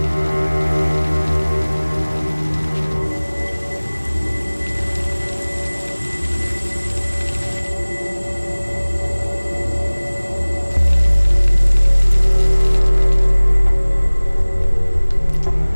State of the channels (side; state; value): both; inverted; correlation -1.00